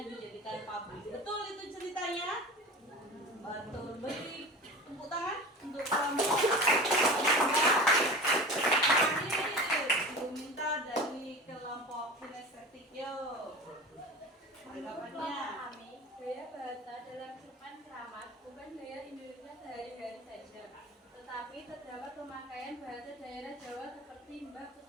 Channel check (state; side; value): normal; both; correlation 0.33